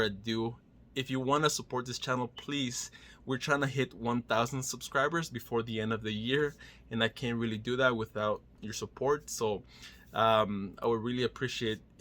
ado, if you want to support this channel, please, we're trying to hit 1,000 subscribers before the end of the year, and I can't really do that without your support. So I would really appreciate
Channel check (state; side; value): identical; both; correlation 1.00